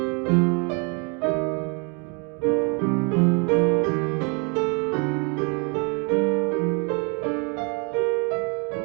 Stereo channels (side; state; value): left; quieter; 34.1 dB